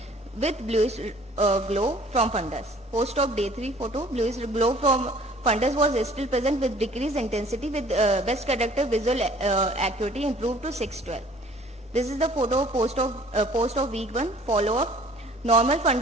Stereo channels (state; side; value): normal; both; correlation 0.53